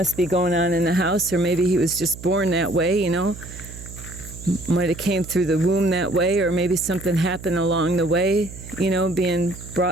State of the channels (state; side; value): noise; right; hum, 14 dB below the sound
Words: be going on in the house, or maybe he was just born that way, might have came through the womb that way, or maybe something happened along the way, being